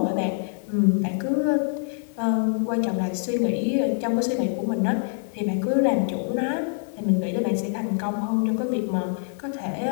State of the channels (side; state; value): right; silent; digital silence